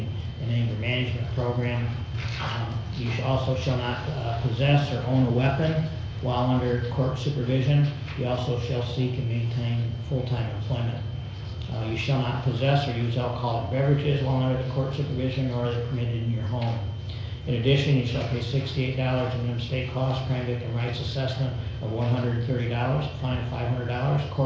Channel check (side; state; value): both; identical; correlation 1.00